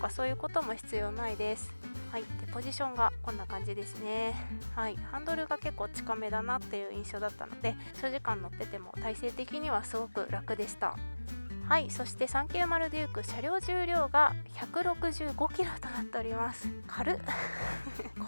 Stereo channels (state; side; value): inverted; both; correlation -1.00